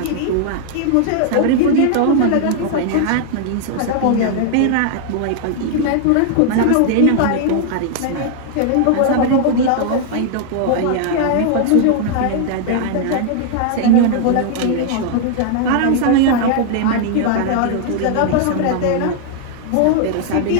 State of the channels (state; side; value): different; both; correlation 0.00